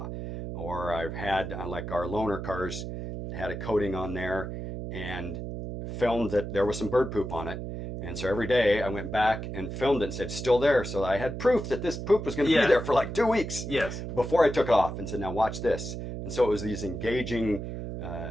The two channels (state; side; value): noise; right; hum, 6 dB below the sound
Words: Or I've had, like our loaner cars, had a coating on there and filmed that there was some bird poop on it. And so every day I went back and filmed it and said, still there. So I had proof that this poop was going to be there for like 2 weeks. Yes. Before I took it off, and said, now watch this. And so it was these engaging